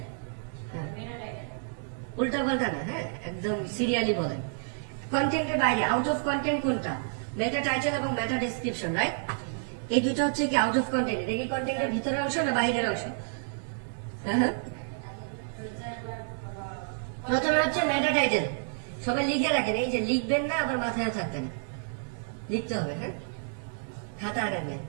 উল্টা পাল্টা না, হ্যাঁ, একদম সিরিয়ালি বলেন। কন্টেন্টের বাইরে আউট অফ কন্টেন্ট কোনটা? মেটা টাইটেল এবং মেটা ডেসক্রিপশন, রাইট? এই দুটো হচ্ছে কি আউট অফ কন্টেন্ট। এটা কি কন্টেন্টের ভিতরের অংশ না বাইরের অংশ? হ্যাঁ, প্রথমে হচ্ছে মেটা টাইটেল। সবাই লিখে রাখেন, এই যে লিখবেন না আবার মাথায় থাকবেন, লিখতে হবে। হ্যাঁ, খাতা আনেন,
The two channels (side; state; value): left; silent; digital silence